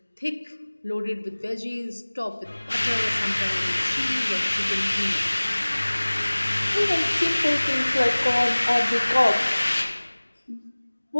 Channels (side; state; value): both; inverted; correlation -1.00